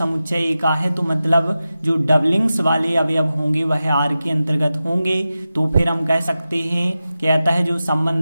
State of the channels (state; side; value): inverted; both; correlation -0.93